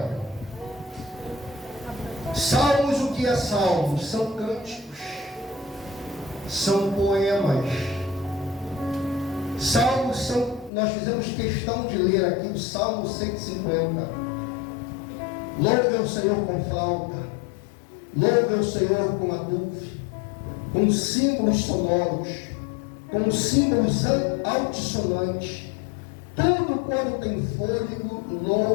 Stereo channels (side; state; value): right; drops out; at 10.7 s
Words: Salmos, o que é salmos? São cânticos, são poemas. Salmos são, nós fizemos questão de ler aqui o Salmo 150. Louve ao Senhor com flauta, louve ao Senhor com adufre, com símbolos sonoros, com símbolos altissonantes. Tudo quando tem fôlego,